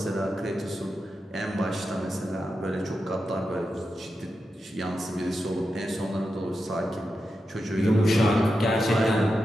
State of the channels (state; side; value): normal; both; correlation 0.89